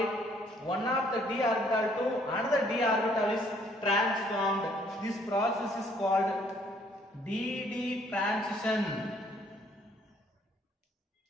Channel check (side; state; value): both; normal; correlation 0.64